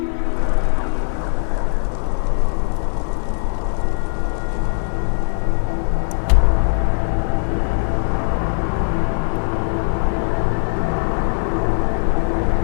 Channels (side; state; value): right; silent; digital silence